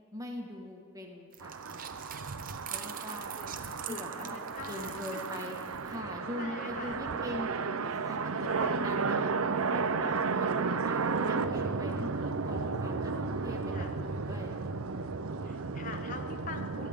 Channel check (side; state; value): left; quieter; 3.6 dB